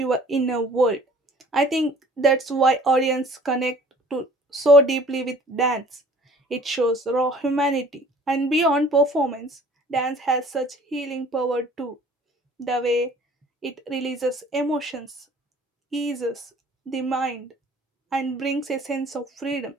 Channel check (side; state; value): both; normal; correlation 0.52